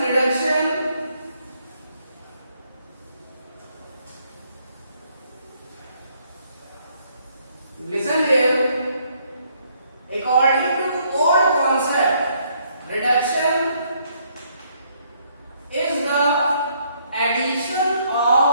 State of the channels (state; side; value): inverted; both; correlation -0.69